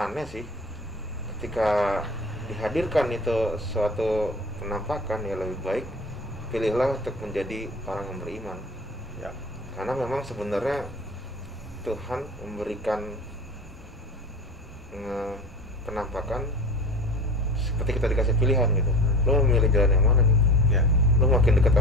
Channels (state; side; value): normal; both; correlation 0.36